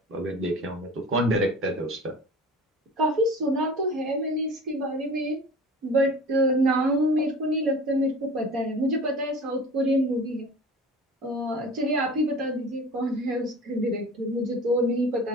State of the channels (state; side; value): normal; both; correlation 0.40